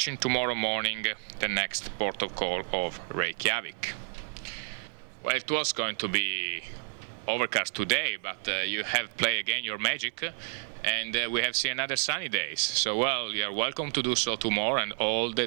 tomorrow morning the next port of call of Reykjavik. Well, it was going to be overcast today, but you have played again your magic, and we have seen another sunny days. So, well, you are welcome to do so tomorrow and all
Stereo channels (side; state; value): left; silent; 57 dB below the other